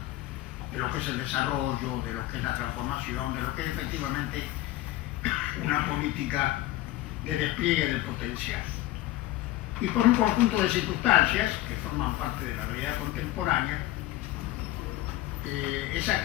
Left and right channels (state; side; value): quieter; right; 15.7 dB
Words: de lo que es el desarrollo, de lo que es la transformación, de lo que es efectivamente una política de despliegue del potencial. Y por un conjunto de circunstancias que forman parte de la realidad contemporánea, esa